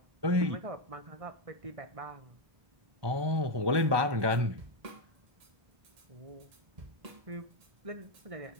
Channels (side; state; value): left; late; 1.2 ms